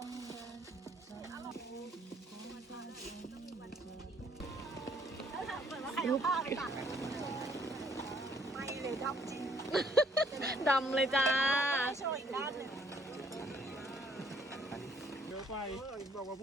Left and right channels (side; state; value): both; normal; correlation 0.64